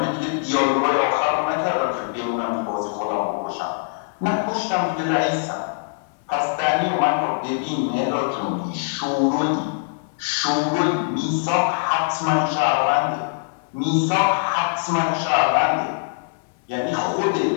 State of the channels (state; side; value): silent; right; 64 dB below the other